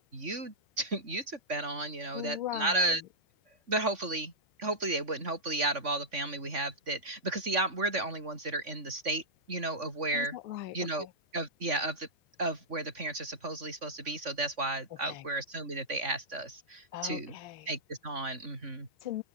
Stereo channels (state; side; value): late; left; 3.5 ms